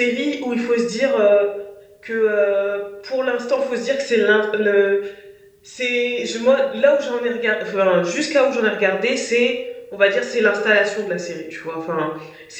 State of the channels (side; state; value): both; identical; correlation 1.00